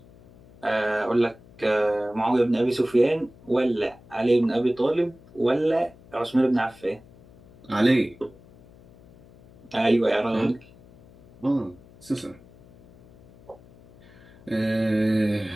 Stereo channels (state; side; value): noise; left; hum, 24 dB below the sound